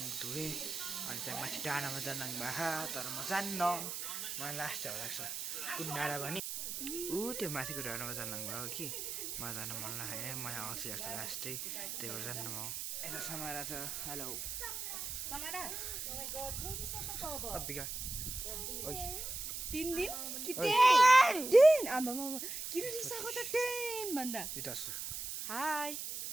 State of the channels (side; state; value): right; noise; hiss, 5 dB below the sound